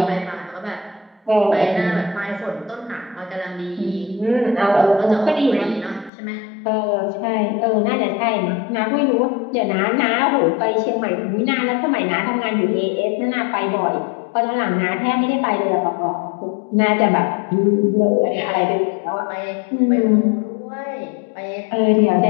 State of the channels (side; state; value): right; drops out; at 6.1 s